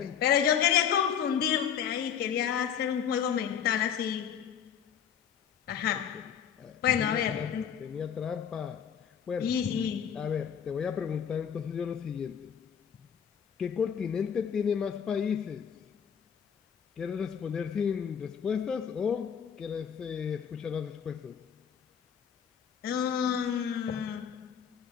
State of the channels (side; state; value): right; quieter; 8.1 dB